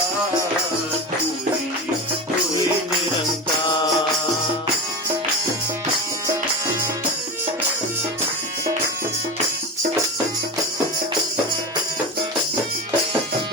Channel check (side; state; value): both; normal; correlation 0.25